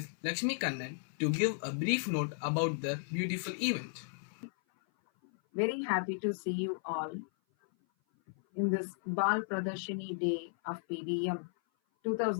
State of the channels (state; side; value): silent; right; 55 dB below the other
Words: Lakshmi Kannan to give a brief note about the beautiful event. Very happy to see you all in this Baal Pradharshini Day of PVM